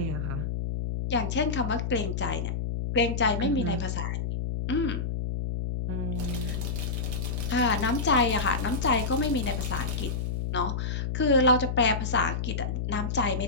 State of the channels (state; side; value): noise; left; hum, 2 dB below the sound